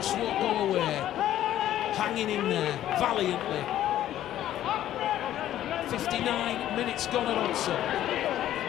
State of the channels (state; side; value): quieter; right; 12.4 dB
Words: won't go away, hanging in there valiantly. 59 minutes gone at Oldham.